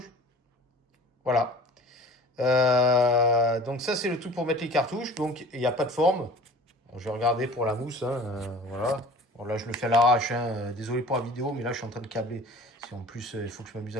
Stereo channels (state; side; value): normal; both; correlation 0.44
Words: Voilà. Donc ça, c'est le truc pour mettre les cartouches. Donc, il n'y a pas de forme. Bon, je vais regarder pour la mousse. Hein, voilà. Bon, là, je le fais à l'arrache. Hein. Désolé pour la vidéo, mais là, je suis en train de câbler. Si en plus, il faut que je m'amuse